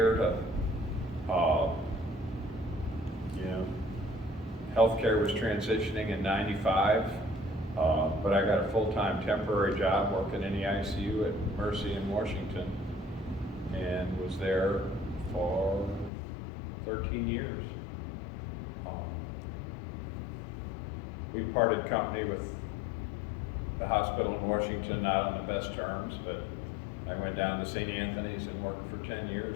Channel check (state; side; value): drops out; right; at 16.1 s